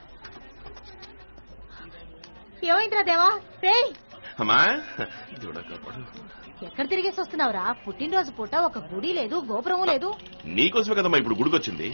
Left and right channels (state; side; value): inverted; both; correlation -1.00